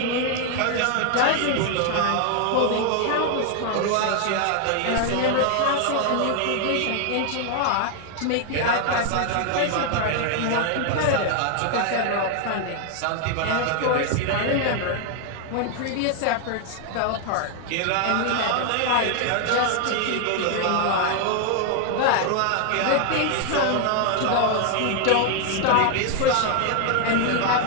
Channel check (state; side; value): different; both; correlation 0.00